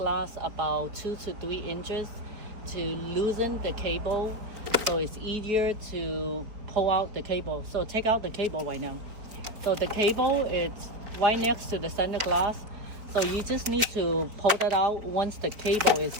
about 2 to 3 inches to loosen the cable, so it's easier to pull out the cable. So take out the cable right now. So the cable is right next to the center glass. So you just need to pull that out once the cable is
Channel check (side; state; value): left; late; 4.5 ms